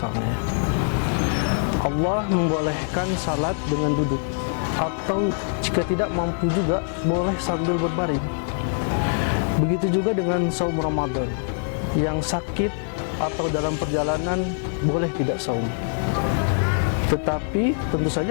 Allah membolehkan salat dengan duduk, atau jika tidak mampu juga boleh sambil berbaring. Begitu juga dengan saum Ramadan. Yang sakit atau dalam perjalanan boleh tidak saum, tetapi tentu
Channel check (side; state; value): right; silent; 63 dB below the other